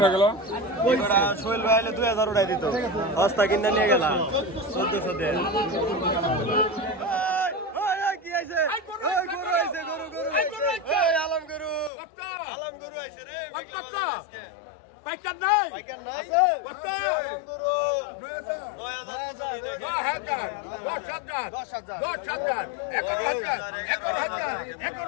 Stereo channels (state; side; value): drops out; right; at 11.9 s